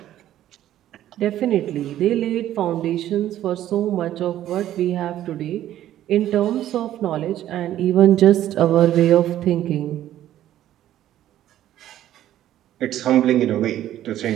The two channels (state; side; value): quieter; left; 12.5 dB